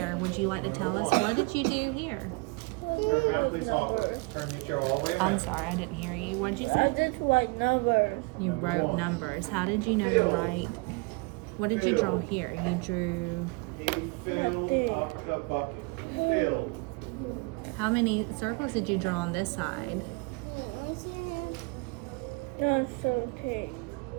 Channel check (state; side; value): quieter; left; 28.8 dB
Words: Would you like to tell us, what did you do here? Turn around, please. Turn your chair all the way I'm around. sorry, I didn't hear you. What did you I say? just write numbers. You wrote numbers. How did you know to write? What did you draw here? You drew, He filled up the bucket. Filled. how many circles did you draw on this side? That's okay.